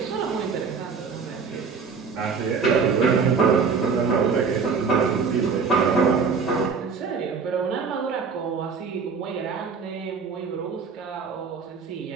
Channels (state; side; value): quieter; left; 5.5 dB